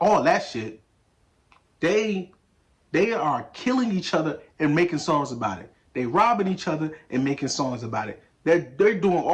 all that shit. They are killing each other and making songs about it. They robbing each other and making songs about it. They're doing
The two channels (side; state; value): both; identical; correlation 1.00